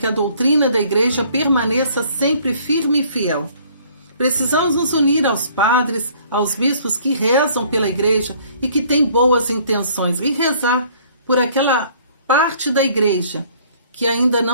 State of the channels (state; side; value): inverted; both; correlation -0.58